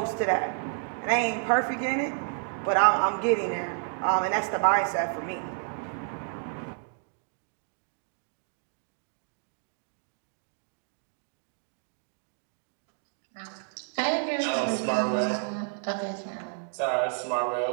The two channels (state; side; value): silent; left; 58 dB below the other